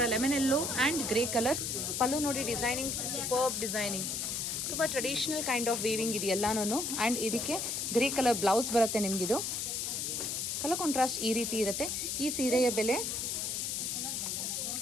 ಲೆಮನೆಲ್ಲೋ ಆ್ಯಂಡ್ ಗ್ರೇ ಕಲರ್ ಪಲ್ಲು ನೋಡಿ. ಡಿಸೈನಿಂಗ್ ಸೂಪರ್ಬ್ ಡಿಸೈನಿಂಗ್, ತುಂಬ ಟ್ರೆಡಿಷನಲ್ ಕೈಂಡ್ ಆಫ್ ವೀವಿಂಗ್ ಇದು ಎಲ್ಲಾನು. ಆ್ಯಂಡ್ ಇದಕ್ಕೆ ಗ್ರೇ ಕಲರ್ ಬ್ಲೌಸ್ ಬರುತ್ತೆ ನಿಮಗಿದು. ಕಲರ್ ಕಾಂಟ್ರಾಸ್ಟ್ ಈ ರೀತಿ ಇರುತ್ತೆ. ಈ ಸೀರೆಯ ಬೆಲೆ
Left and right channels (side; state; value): left; noise; hiss, 1 dB below the sound